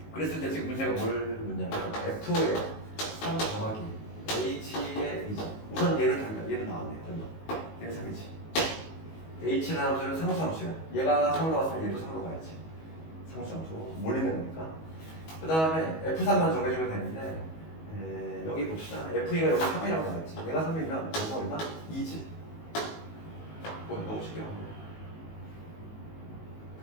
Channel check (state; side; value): late; right; 19 ms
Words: 그랬을 때 지금 문제가 뭘 묻냐면 F의 3 더하기 H의 2죠. 우선 얘는 달라. 얘는 나왔네. 얼마? 얘는 3이지. H라는 함수는 상수함수야. 얘가 3으로 왔으면 얘도 3으로 가야지. 상수함수. 몰리는 거니까. 그 다음에 F3만 정해주면 되는데 여기 봅시다. F가 여기 3이라고 나왔지. 얘가 3이면 여기가 얼마? 2지. 뭐야 너무 쉽게 나왔네.